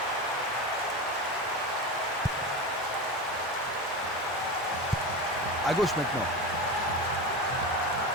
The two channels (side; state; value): both; normal; correlation 0.23